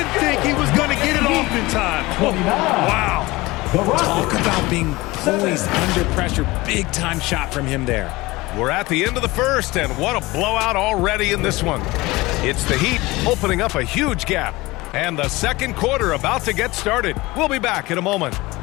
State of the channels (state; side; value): quieter; right; 21.0 dB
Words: think he was going to get it off in time. Wow. Talk about being poised under pressure. Big time shot from him there. We're at the end of the first, and what a blowout already in this one. It's the Heat opening up a huge gap. And the second quarter about to get started. We'll be back in a moment.